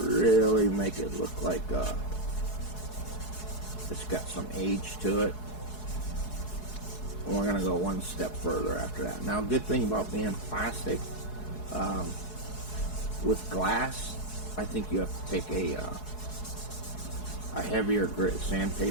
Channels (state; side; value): late; right; 4.7 ms